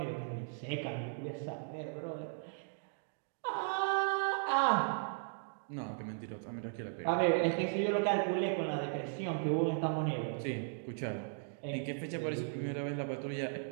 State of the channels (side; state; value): left; silent; digital silence